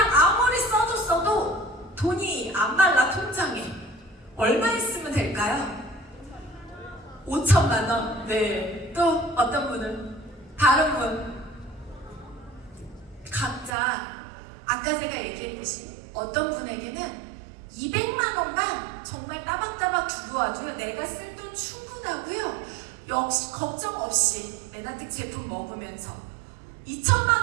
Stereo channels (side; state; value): left; drops out; at 13.7 s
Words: 아무리 써도 돈이 안 말라. 통장에 얼마 있으면 될까요? 5천만 원. 네. 또 어떤 분은? 다른 분? 각자 아까 제가 얘기했듯이 어떤 분에게는 200만 원만 정말 따박따박 들어와줘요. 내가 쓸 돈 충분하고요. 역시 걱정 없이 메나텍 제품 먹으면서 2천만